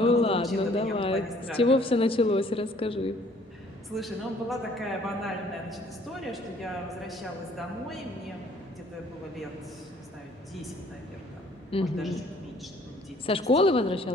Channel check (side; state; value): both; normal; correlation 0.58